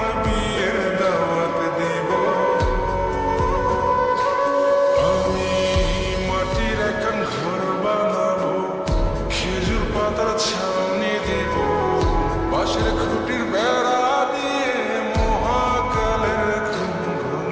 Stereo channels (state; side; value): identical; both; correlation 1.00